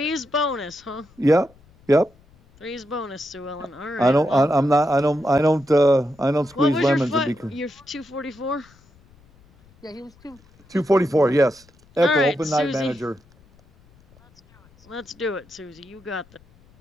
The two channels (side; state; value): left; noise; rumble, 29 dB below the sound